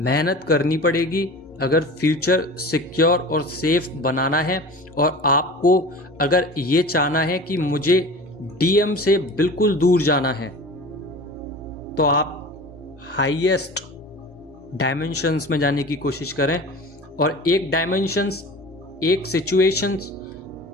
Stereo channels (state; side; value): normal; both; correlation 0.37